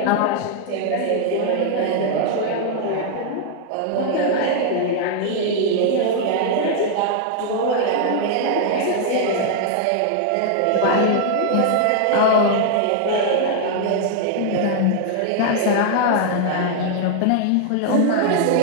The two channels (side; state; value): both; different; correlation -0.01